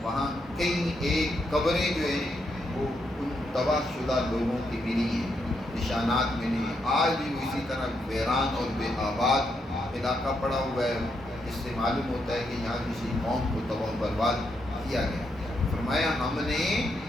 وہاں کئی ایک قبریں جو ہیں وہ ان تباہ شدہ لوگوں کی ملی ہیں، نشانات ملے ہیں۔ آج بھی وہ اسی طرح ویران اور بے آباد علاقہ پڑا ہوا ہے، اس سے معلوم ہوتا ہے کہ یہاں کسی قوم کو تباہ و برباد کیا گیا۔ فرمایا ہم نے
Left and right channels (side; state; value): both; normal; correlation 0.79